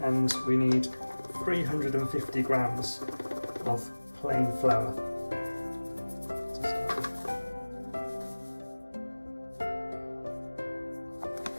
And we need 350 grams of plain flour to start with.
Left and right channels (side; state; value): both; inverted; correlation -1.00